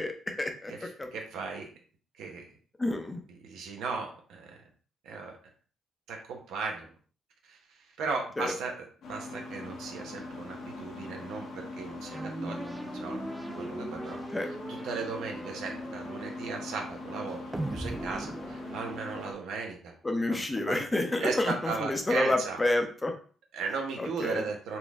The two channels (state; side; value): normal; both; correlation 0.81